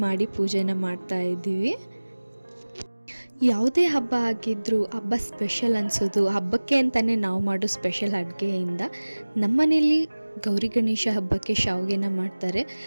ಮಾಡಿ ಪೂಜೆನ ಮಾಡ್ತಾ ಇದ್ದೀವಿ. ಯಾವುದೇ ಹಬ್ಬ ಆಗಿದ್ದರೂ ಹಬ್ಬ ಸ್ಪೆಷಲ್ ಅನಿಸೋದು ಹಬ್ಬಕ್ಕೆ ಅಂತಲೇ ನಾವು ಮಾಡೋ ಸ್ಪೆಷಲ್ ಅಡುಗೆಯಿಂದ. ನಮ್ಮ ಮನೇಲಿ ಗೌರಿ ಗಣೇಶ ಹಬ್ಬಕ್ಕೆ ಶಾವಿಗೆನ ಮಾಡ್ತಾರೆ.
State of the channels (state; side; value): inverted; both; correlation -1.00